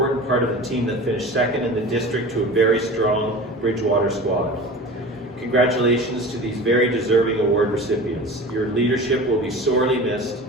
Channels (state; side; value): normal; both; correlation 0.36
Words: part of the team that finished second in the district to a very strong Bridgewater squad. Congratulations to these very deserving award recipients. Your leadership will be sorely missed,